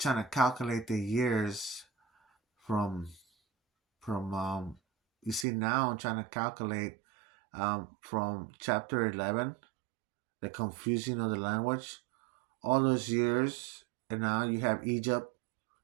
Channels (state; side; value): drops out; left; at 5.5 s